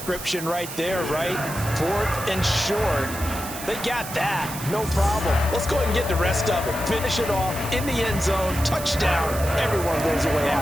right there, right? Fourth and short. They got that. No problem. Let's go ahead and get the rest of it. Finish it off in the end zone. Touchdown. Everyone goes away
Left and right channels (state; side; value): noise; right; hiss, 10 dB below the sound